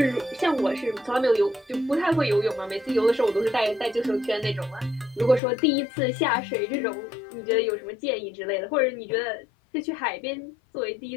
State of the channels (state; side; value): drops out; right; at 5.4 s